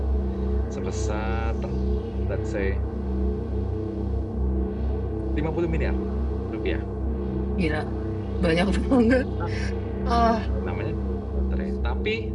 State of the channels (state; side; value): identical; both; correlation 1.00